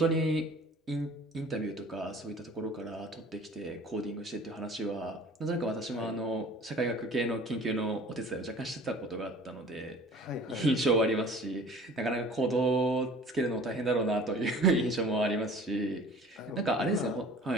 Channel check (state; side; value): normal; both; correlation 0.47